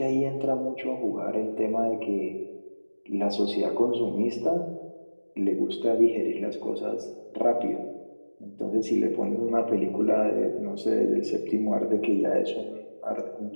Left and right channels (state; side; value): inverted; both; correlation -1.00